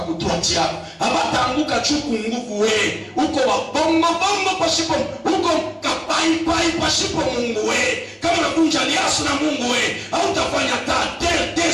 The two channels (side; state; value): both; identical; correlation 1.00